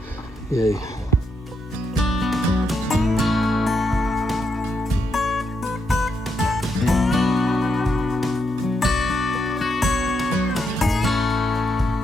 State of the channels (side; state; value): both; normal; correlation 0.80